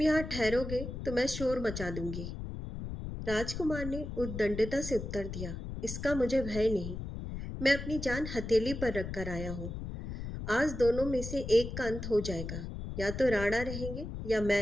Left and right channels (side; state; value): left; noise; rumble, 7 dB below the sound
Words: यहाँ ठहरोगे तो मैं शोर मचा दूंगी। राजकुमार ने उद्दंडता से उत्तर दिया, इसका मुझे भय नहीं। मैं अपनी जान हथेली पर रखकर आया हूँ। आज दोनों में से एक का अंत हो जाएगा। या तो राणा रहेंगे या